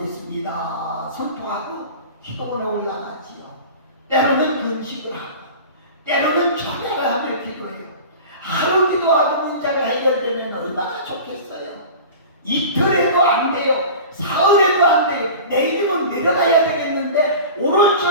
선포하고 기도원에 올라가지요. 때로는 금식을 하고 때로는 찬양을 하며 기도해요. 하루 기도하고 문제가 해결되면 얼마나 좋겠어요. 이틀에도 안 돼요. 사흘에도 안 돼요. 내일은 내려가야 되겠는데 오늘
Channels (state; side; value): inverted; both; correlation -0.36